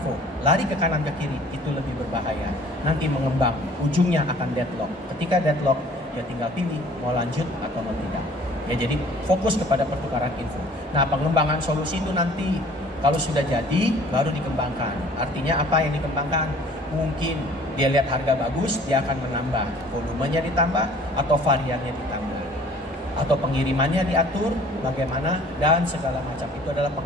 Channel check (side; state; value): both; normal; correlation 0.52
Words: lari ke kanan ke kiri, itu lebih berbahaya. Nanti mengembang, ujungnya akan deadlock. Ketika deadlock, ya tinggal pilih mau lanjut atau mau tidak. Ya, jadi fokus kepada pertukaran info. Nah, pengembangan solusi itu nanti kalau sudah jadi baru dikembangkan. Artinya apa yang dikembangkan? Mungkin dia lihat harga bagus, dia akan menambah volumenya, ditambah atau variannya ditambah, atau pengirimannya diatur bagaimana, dan segala macam. Itu adalah